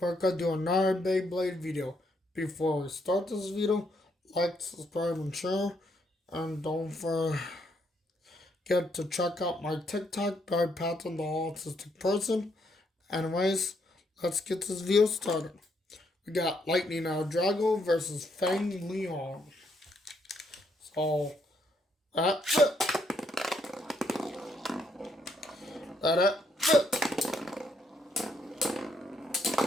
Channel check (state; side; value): normal; both; correlation 0.74